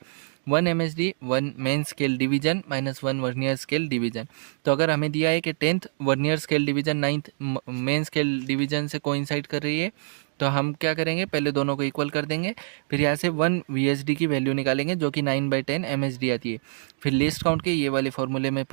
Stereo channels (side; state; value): left; silent; digital silence